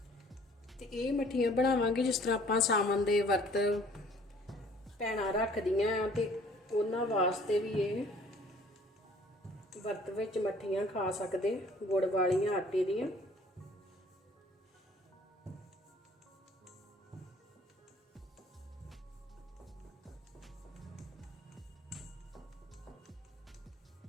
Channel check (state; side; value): normal; both; correlation 0.55